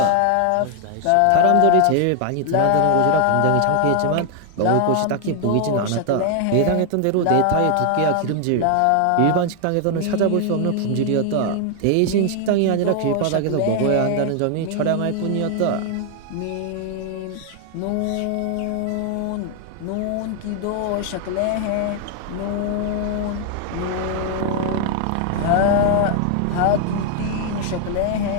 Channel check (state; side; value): different; both; correlation 0.00